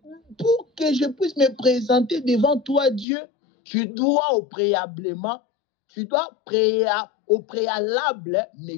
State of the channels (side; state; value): right; drops out; at 3.1 s